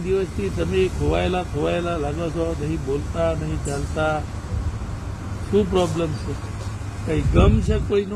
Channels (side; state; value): both; identical; correlation 1.00